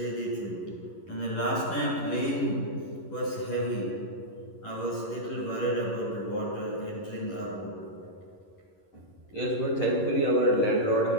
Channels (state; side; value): late; right; 11 ms